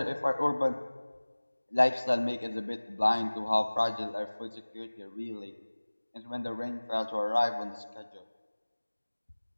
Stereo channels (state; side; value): inverted; both; correlation -1.00